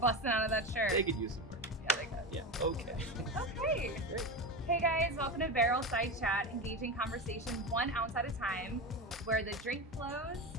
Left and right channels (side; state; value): both; normal; correlation 0.21